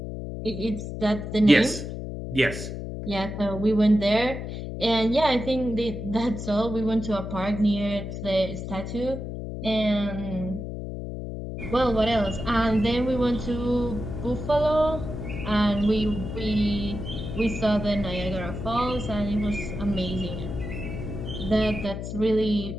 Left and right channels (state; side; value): noise; left; hum, 6 dB below the sound